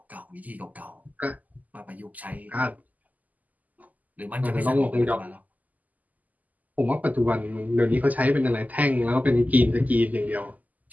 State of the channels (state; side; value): late; left; 0.079 ms